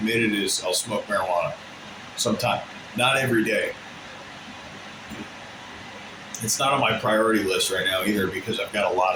is I'll smoke marijuana sometime. Not every day. It's not on my priority list right now either, because I've got a lot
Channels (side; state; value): both; identical; correlation 1.00